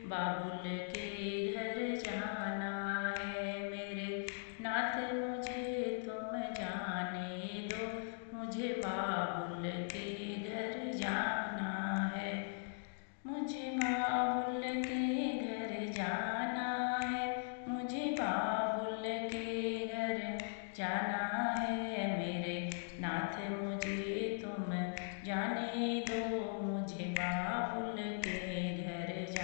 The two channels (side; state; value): right; silent; digital silence